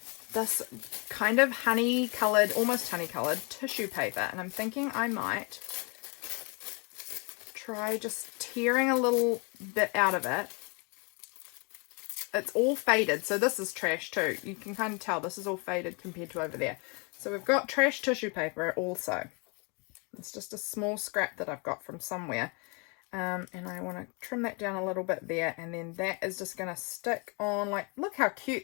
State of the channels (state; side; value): quieter; right; 32.5 dB